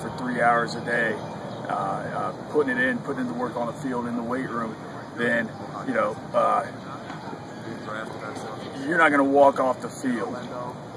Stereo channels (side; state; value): both; identical; correlation 1.00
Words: 3 hours a day, putting in the work on the field in the weight room, then you know, you're not going to walk off the field,